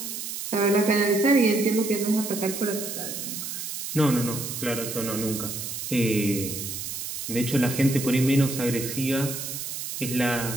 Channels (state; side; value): noise; right; hiss, 6 dB below the sound